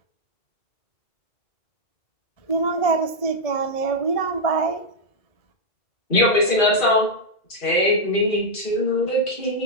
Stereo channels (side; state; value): right; late; 1.7 ms